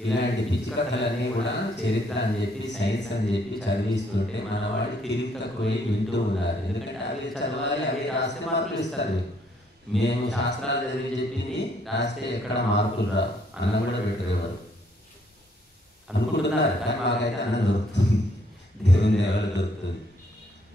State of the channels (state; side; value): normal; both; correlation 0.68